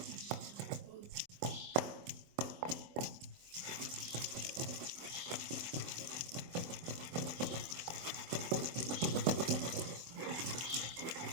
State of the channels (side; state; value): left; late; 24 ms